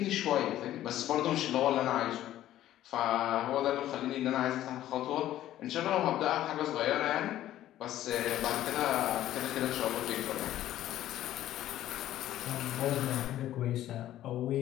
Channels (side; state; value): right; quieter; 13.2 dB